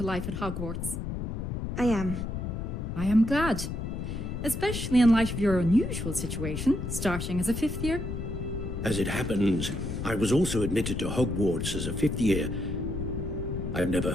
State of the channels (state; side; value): noise; left; rumble, 4 dB below the sound